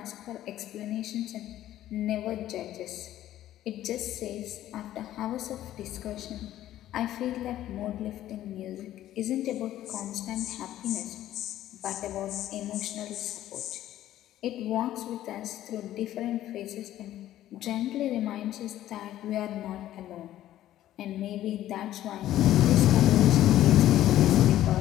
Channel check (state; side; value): quieter; right; 13.2 dB